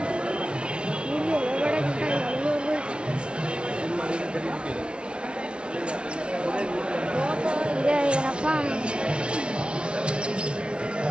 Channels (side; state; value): left; late; 0.058 ms